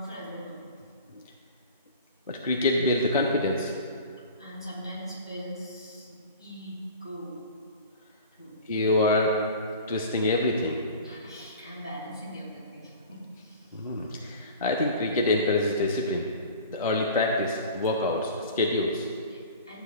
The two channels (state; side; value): inverted; both; correlation -0.39